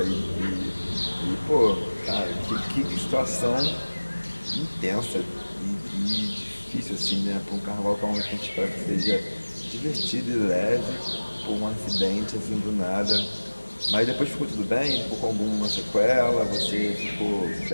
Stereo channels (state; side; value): inverted; both; correlation -1.00